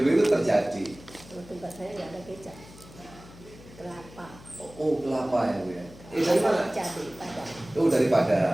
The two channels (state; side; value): noise; left; hum, 20 dB below the sound